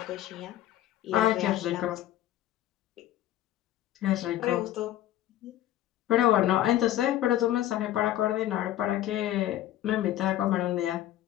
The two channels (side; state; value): right; quieter; 13.2 dB